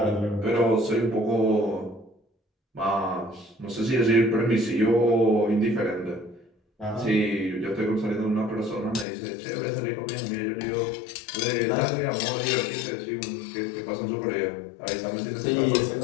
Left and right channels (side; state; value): right; drops out; at 9.1 s